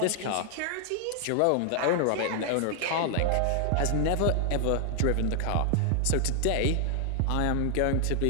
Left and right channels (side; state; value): both; different; correlation 0.00